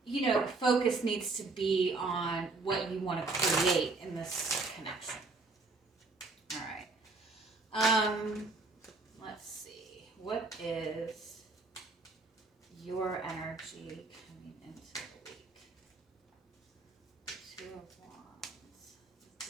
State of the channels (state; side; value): quieter; left; 3.6 dB